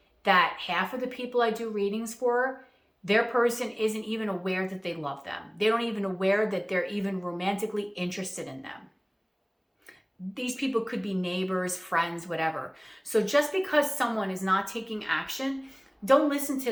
that half of the people I do readings for, their person isn't even aware that they love them. They don't even aware that they're even romantically interested in them. These people could be neighbors, friends, whatever. So just because someone is not taking action, don't listen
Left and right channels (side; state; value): both; identical; correlation 1.00